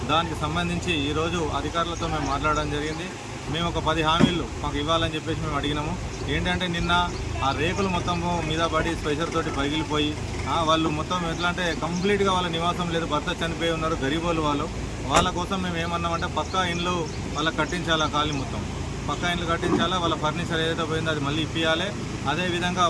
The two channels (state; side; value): identical; both; correlation 1.00